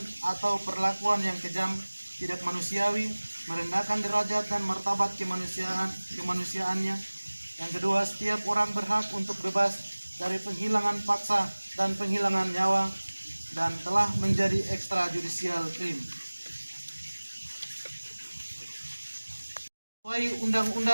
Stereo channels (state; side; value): inverted; both; correlation -1.00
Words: atau perlakuan yang kejam, tidak manusiawi, merendahkan derajat dan martabat kemanusiaannya. Yang kedua, setiap orang berhak untuk bebas dari penghilangan paksa dan penghilangan nyawa dan telah menjadi extrajudicial crime. Sesuai